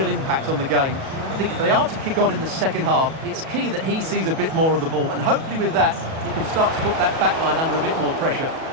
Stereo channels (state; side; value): late; left; 37 ms